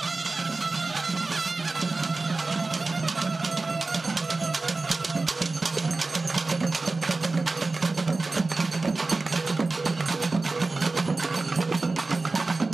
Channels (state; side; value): quieter; left; 3.5 dB